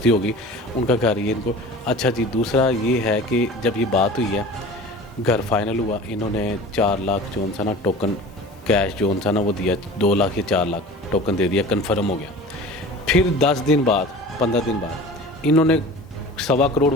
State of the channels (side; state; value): both; normal; correlation 0.39